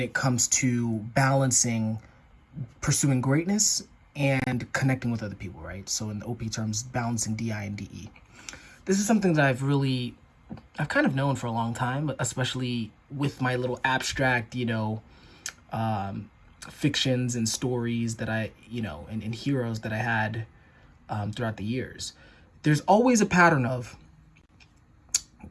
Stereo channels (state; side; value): identical; both; correlation 1.00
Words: comes to balancing pursuing greatness and connecting with other people, right? So in the OP terms, balancing DI and DE. This is something that I've kind of known for a long time, especially with my little abstract, fictions and stories that and heroes that I had throughout the years. There's always a pattern of